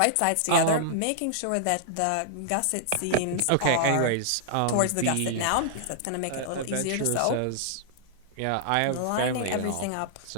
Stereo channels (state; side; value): different; both; correlation -0.01